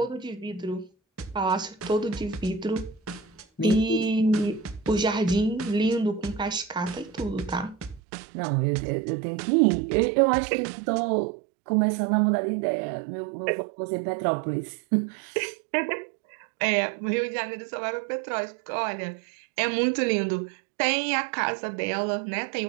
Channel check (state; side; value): drops out; left; at 8.0 s